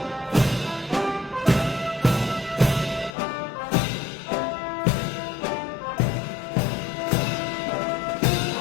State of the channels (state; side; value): drops out; right; at 3.2 s